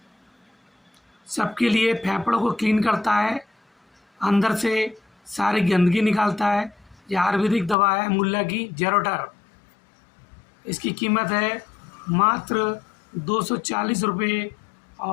सबके लिए फेफड़ों को क्लीन करता है, अंदर से सारी गंदगी निकालता है। यह आयुर्वेदिक दवा है मुल्ला की जेरोटर। इसकी कीमत है मात्र 240 रुपये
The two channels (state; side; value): drops out; right; at 7.8 s